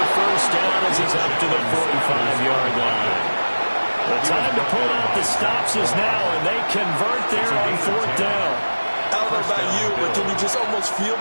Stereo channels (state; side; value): inverted; both; correlation -1.00